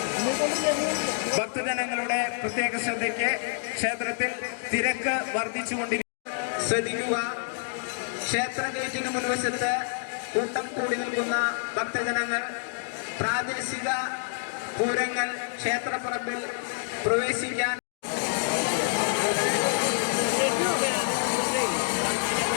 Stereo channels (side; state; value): right; silent; digital silence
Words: ഭക്തജനങ്ങളുടെ പ്രത്യേക ശ്രദ്ധയ്ക്ക് ക്ഷേത്രത്തിൽ തിരക്ക് വർദ്ധിച്ചുകൊണ്ടിരിക്കുന്നു. ശ്രദ്ധിക്കുക, ക്ഷേത്ര ഗേറ്റിന് മുൻവശത്ത് കൂട്ടം കൂടി നിൽക്കുന്ന ഭക്തജനങ്ങൾ പ്രാദേശിക പൂരങ്ങൾ ക്ഷേത്രപ്പറമ്പിൽ പ്രവേശിക്കാൻ